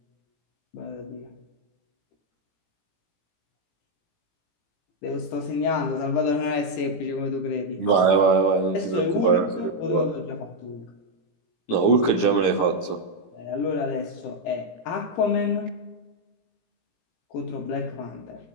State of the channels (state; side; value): late; right; 18 ms